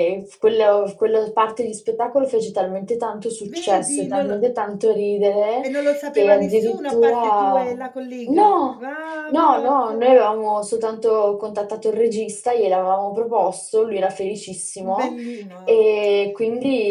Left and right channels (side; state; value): both; identical; correlation 1.00